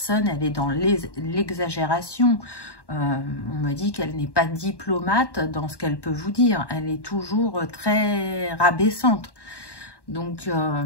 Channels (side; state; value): right; late; 1.1 ms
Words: elle est dans l'exagération. On me dit qu'elle n'est pas diplomate dans ce qu'elle peut vous dire. Elle est toujours très rabaissante. Donc,